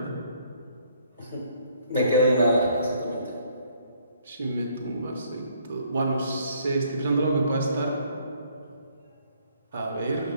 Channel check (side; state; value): both; inverted; correlation -0.65